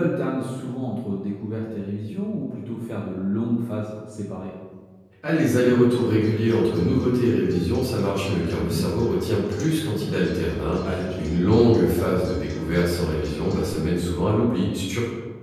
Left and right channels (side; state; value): both; identical; correlation 1.00